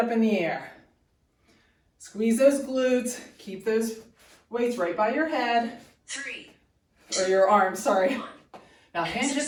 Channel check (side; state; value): both; identical; correlation 1.00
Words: in the air. Squeeze those glutes. Keep those weights right by your head, 3, or your arms, sorry. 1. Now hinge at